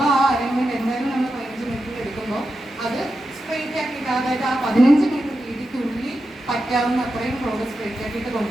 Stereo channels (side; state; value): both; normal; correlation 0.89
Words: ആ അലൈൻമെന്റ് എന്തായാലും നമ്മൾ 15 മീറ്റർ എടുക്കുമ്പോൾ അത് സ്ട്രെയിറ്റ് ആക്കിയിട്ട് അതായത് ആ 15 മീറ്റർ രീതിക്കുള്ളിൽ പറ്റാവുന്ന അത്രയും റോഡ് സ്ട്രെയിറ്റ് ആക്കിയിട്ട്